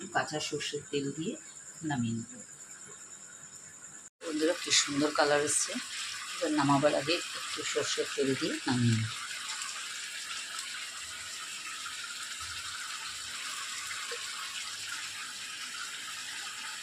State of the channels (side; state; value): both; identical; correlation 1.00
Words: কাঁচা সর্ষের তেল দিয়ে নামিয়ে নেব। বন্ধুরা কি সুন্দর কালার এসছে। এবার নামাবার আগে একটু সর্ষের তেল দিয়ে নামিয়ে নেব।